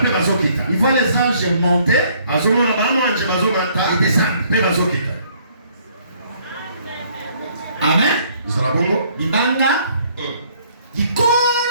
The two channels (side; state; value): both; inverted; correlation -0.63